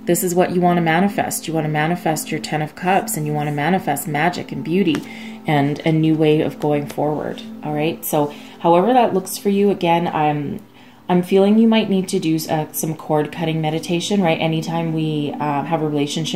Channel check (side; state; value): both; identical; correlation 1.00